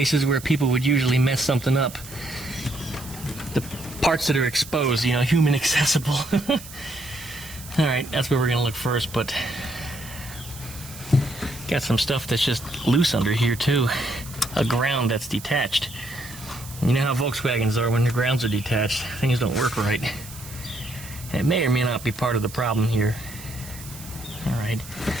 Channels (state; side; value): noise; right; hiss, 15 dB below the sound